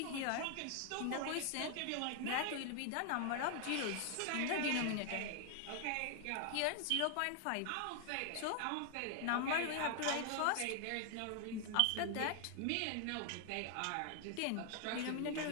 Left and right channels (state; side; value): different; both; correlation 0.00